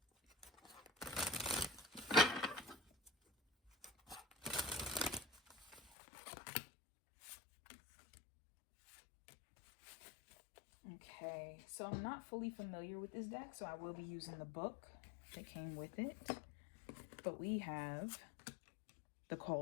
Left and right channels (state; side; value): drops out; right; at 5.9 s